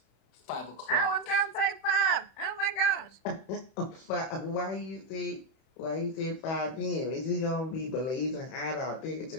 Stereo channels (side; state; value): right; late; 31 ms